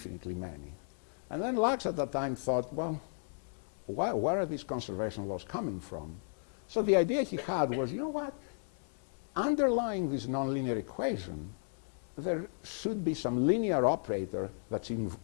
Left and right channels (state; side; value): silent; right; digital silence